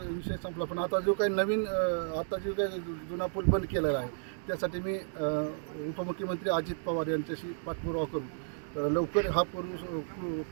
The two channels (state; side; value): silent; left; digital silence